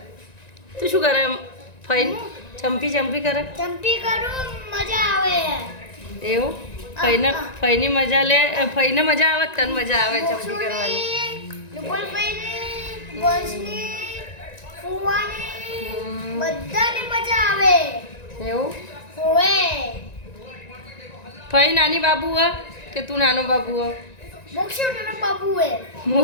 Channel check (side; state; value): right; late; 1.9 ms